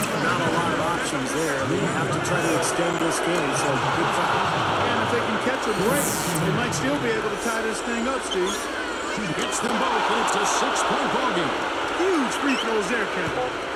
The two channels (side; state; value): both; identical; correlation 1.00